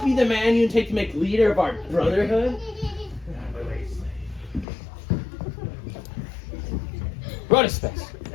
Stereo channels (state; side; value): drops out; right; at 4.7 s